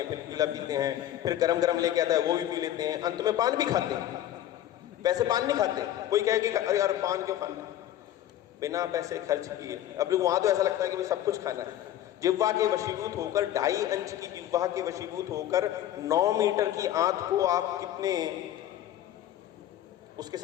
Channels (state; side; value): quieter; right; 12.3 dB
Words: फिर पीला पीते हैं, फिर गरम गरम लेके आता है, वो भी पी लेते हैं, अंत में पान भी खाते हैं। वैसे पान नहीं खाते। कोई कहे कि अरे यार पान क्यों खाना, बिना पैसे खर्च किए। अब वहां तो ऐसा लगता है कि भाई सब कुछ खाना है। जिह्वा के वशीभूत होकर, 2.5 इंच की जिह्वा के वशीभूत होकर 9 मीटर की आंत को आप कितने उसके